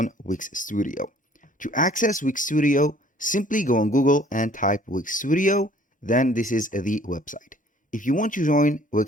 Wix Studio. To access Wix Studio, simply go on Google and type Wix Studio, then this is the website. If you want to join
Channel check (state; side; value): normal; both; correlation 0.56